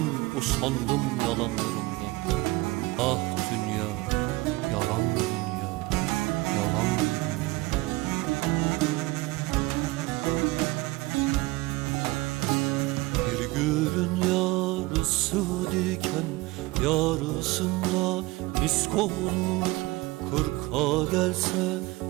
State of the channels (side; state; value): left; quieter; 21.1 dB